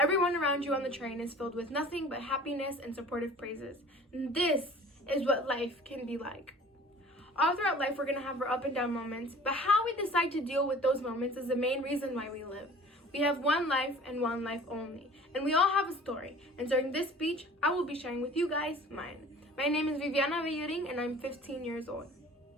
around you on the train is filled with nothing but happiness and supportive praises. And this is what life can be like. All throughout life, we're going to have our up and down moments, but how we decide to deal with those moments is the main reason why we live. We have one life and one life only, and we all have a story. And during this speech, I will be sharing with you guys mine. My name is Viviana Villaring, and I'm 15 years old.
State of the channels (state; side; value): normal; both; correlation 0.46